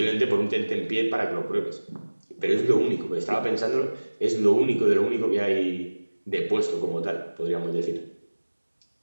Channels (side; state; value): both; inverted; correlation -1.00